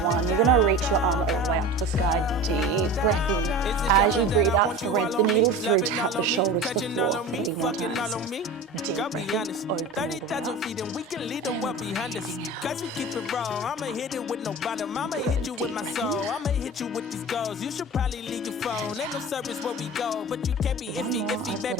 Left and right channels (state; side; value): normal; both; correlation 0.34